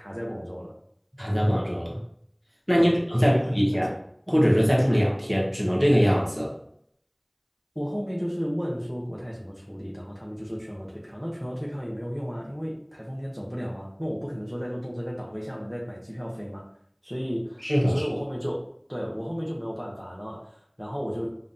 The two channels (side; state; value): both; identical; correlation 1.00